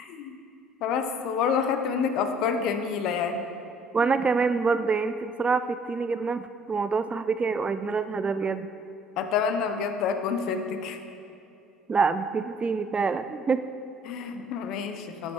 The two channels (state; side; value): normal; both; correlation 0.58